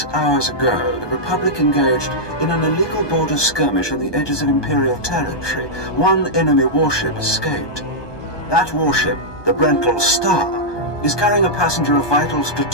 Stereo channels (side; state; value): right; late; 1.2 ms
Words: hours ago, the Republic engaged in an illegal border skirmish on the edges of Imperial territory. One enemy warship escaped. That warship, the Brental Star, is carrying a passenger of vital